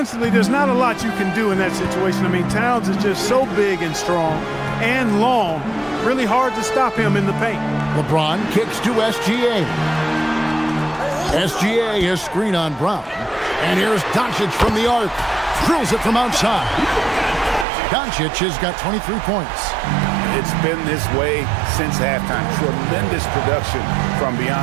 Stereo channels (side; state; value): left; drops out; at 17.7 s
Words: there's not a lot you can do in that situation. I mean, Towns is just so big and strong and long. Really hard to stop him in the paint. LeBron kicks to SGA. SGA has screen on Brown. And here's Doncic from the arc. Drills it from outside. Doncic has got 23 points. It's been this way since halftime. Tremendous production from